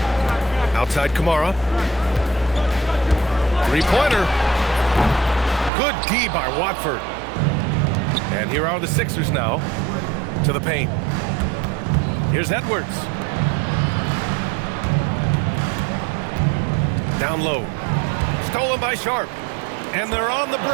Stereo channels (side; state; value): left; drops out; at 5.7 s